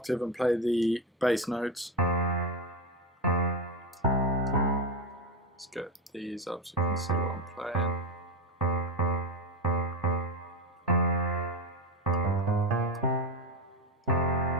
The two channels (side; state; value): both; normal; correlation 0.15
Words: and play the bass notes. Let's get these up so you can see what I'm playing.